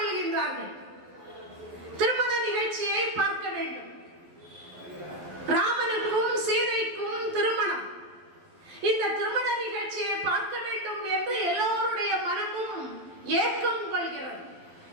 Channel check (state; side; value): late; left; 12 ms